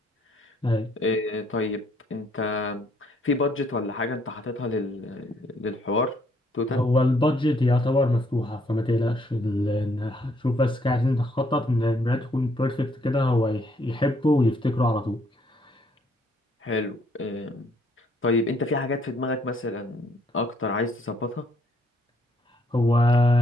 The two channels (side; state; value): both; normal; correlation 0.68